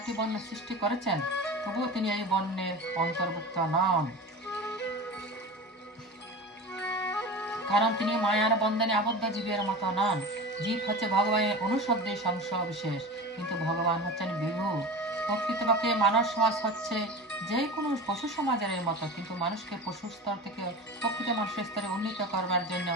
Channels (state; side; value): normal; both; correlation 0.31